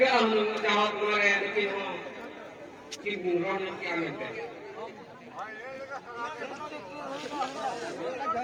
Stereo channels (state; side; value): identical; both; correlation 1.00